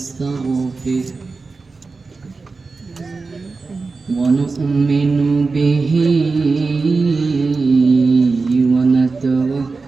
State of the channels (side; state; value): left; quieter; 4.1 dB